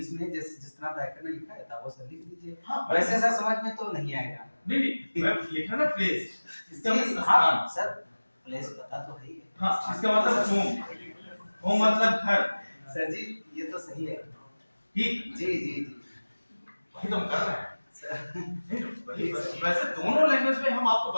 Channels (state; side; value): inverted; both; correlation -1.00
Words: में जिस तरह व्याकरण लिखा है था वो सर लिख दीजिए। हाँ, वैसे सर समझ में तो नहीं आएगा। नहीं मैं लिखा ना प्लेस, इसका मतलब हाँ स्थान। सर प्लेस पता तो है ही है। हाँ, इसका मतलब होम। होम मतलब घर। सर जी ये तो सही है। ठीक, जी जी जी वही तो हम कर रहे हैं। सर। वैसे दोनों लैंग्वेज में हम आपको